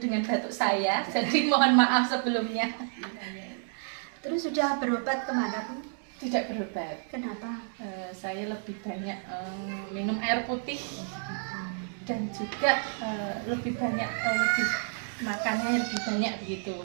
dengan batuk saya, jadi mohon maaf sebelumnya. Terus sudah berobat kemana, Bu? Tidak berobat. Kenapa? Saya lebih banyak minum air putih dan juga lebih banyak lebih makannya lebih banyak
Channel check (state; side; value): silent; left; 58 dB below the other